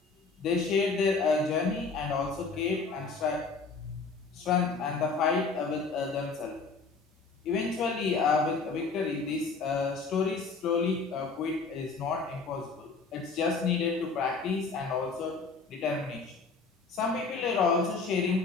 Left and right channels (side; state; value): right; quieter; 4.4 dB